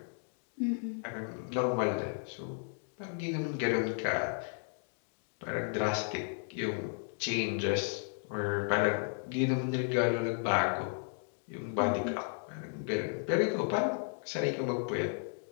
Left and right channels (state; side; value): silent; right; 55 dB below the other